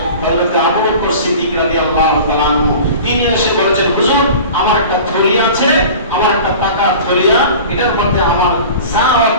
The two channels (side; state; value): both; inverted; correlation -0.39